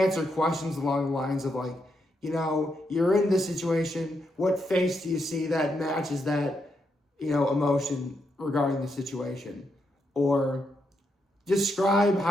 questions along the lines of like, you're in this situation. What face do you see that matches that, emotion regarding the situation? Or describe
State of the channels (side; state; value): both; normal; correlation 0.81